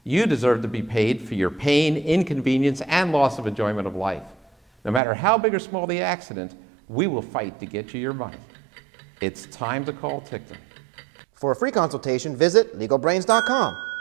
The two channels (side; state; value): left; drops out; at 5.0 s